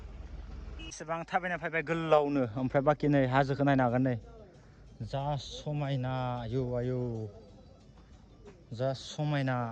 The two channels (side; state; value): both; identical; correlation 1.00